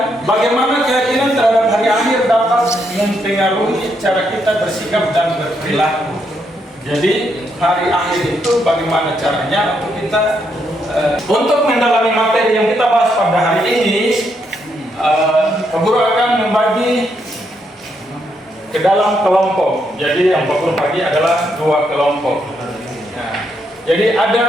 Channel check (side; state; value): both; normal; correlation 0.77